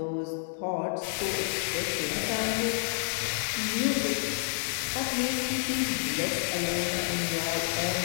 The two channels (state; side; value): silent; right; 58 dB below the other